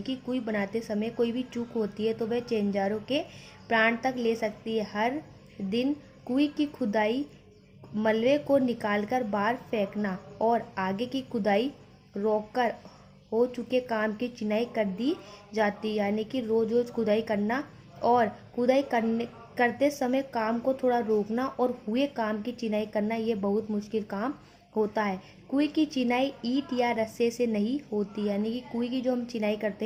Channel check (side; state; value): both; identical; correlation 1.00